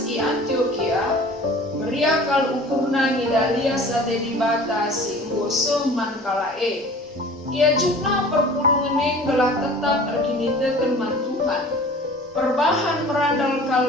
i Antioquia meriakal ukurna ngidalia sate dibata singgo seman kalae. Ia jukna perpulungan gelah tetap erkinitekan man Tuhan. Perbahan merandal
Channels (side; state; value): both; normal; correlation 0.44